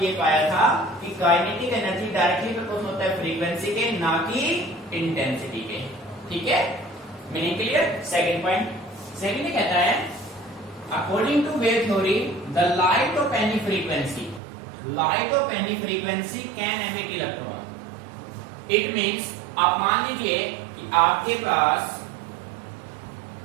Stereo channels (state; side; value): drops out; left; at 14.4 s